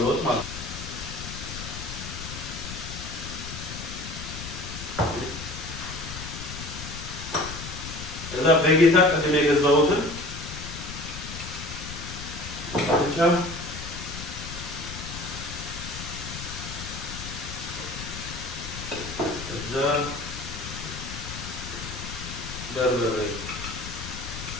ለውጥ ማለት ነው። እዛ በጌታ ቅድም የገዛሁትን ብቻ እዛ በርበሬ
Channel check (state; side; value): noise; left; rumble, 9 dB below the sound